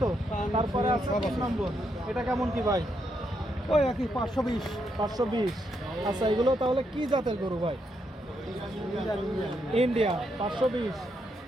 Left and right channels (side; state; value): both; normal; correlation 0.79